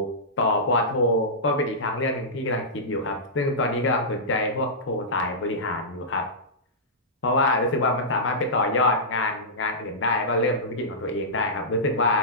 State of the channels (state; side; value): normal; both; correlation -0.16